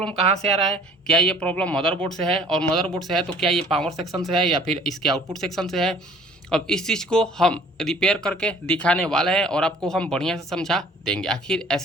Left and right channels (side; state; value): both; normal; correlation 0.52